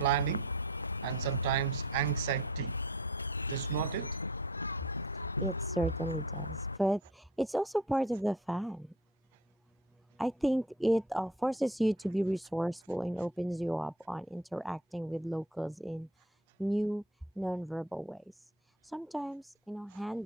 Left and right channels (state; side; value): normal; both; correlation 0.43